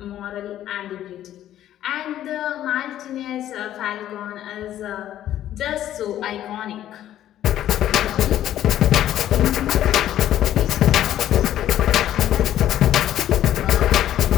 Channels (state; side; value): quieter; right; 12.1 dB